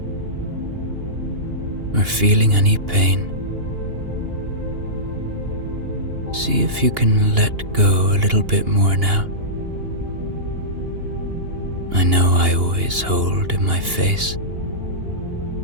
or feeling any pain, see if you can let go a little bit more now. I know I always hold in my face.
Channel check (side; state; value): left; late; 2.8 ms